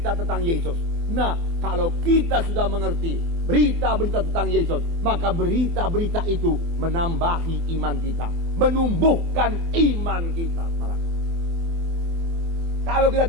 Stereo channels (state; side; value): late; left; 24 ms